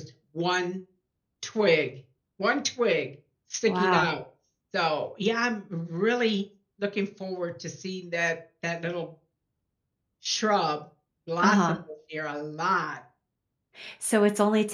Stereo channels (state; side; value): identical; both; correlation 1.00